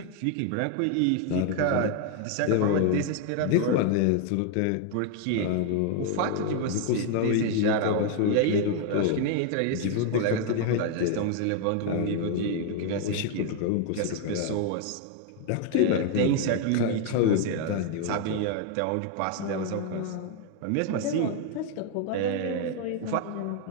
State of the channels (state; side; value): different; both; correlation 0.00